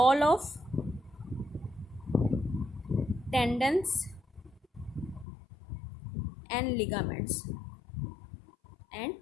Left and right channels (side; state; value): right; drops out; at 5.2 s